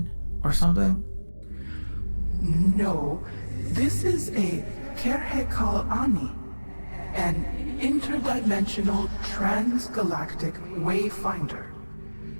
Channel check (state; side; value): inverted; both; correlation -1.00